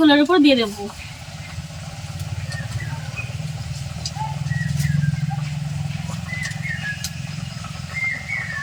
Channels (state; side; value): identical; both; correlation 1.00